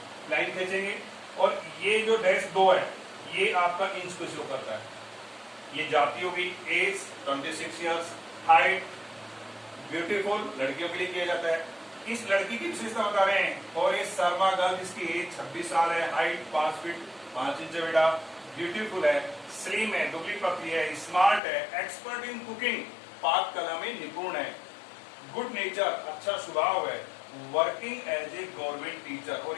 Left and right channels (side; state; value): right; drops out; at 21.4 s